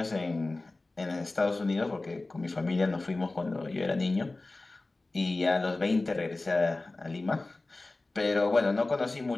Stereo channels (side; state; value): right; quieter; 3.1 dB